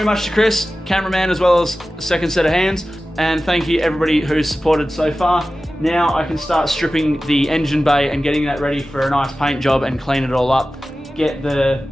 much to Chris, cameraman, as well as the second set of hands, and thank you everybody who's supported so far. Now I can start stripping the engine bay and getting that ready for a nice paint job and clean it all up. Get the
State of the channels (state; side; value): normal; both; correlation 0.95